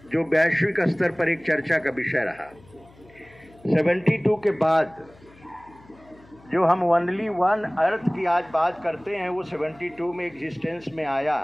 जो वैश्विक स्तर पर एक चर्चा का विषय रहा। 72 के बाद जो हम ओनली वन अर्थ की आज बात करते हैं, वो 72 में एग्जिस्टेंस में आया।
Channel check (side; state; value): left; noise; hum, 26 dB below the sound